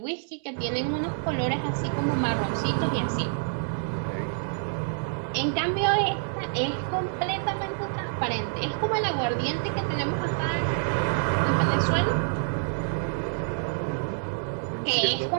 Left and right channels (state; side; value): silent; left; digital silence